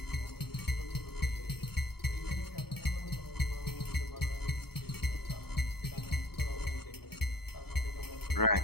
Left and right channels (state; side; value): late; right; 0.96 ms